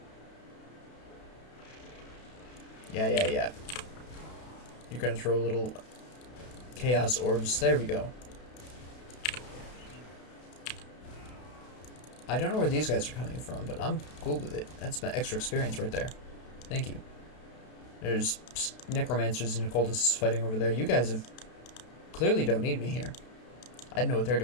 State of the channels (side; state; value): right; late; 32 ms